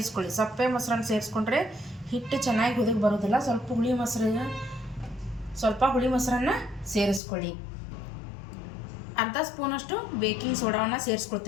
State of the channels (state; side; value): drops out; right; at 7.2 s